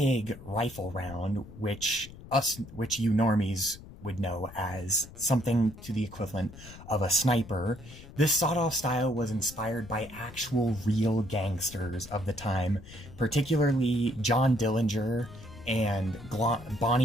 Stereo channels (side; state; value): left; noise; rumble, 17 dB below the sound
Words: rifle round, which you normies would know as something to the equivalent of a sniper. This sawed-off style was inspired by actual real gangsters of the time, particularly John Dillinger and